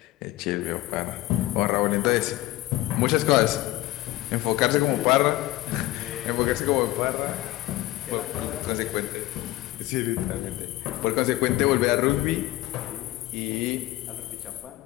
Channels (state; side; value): quieter; right; 17.0 dB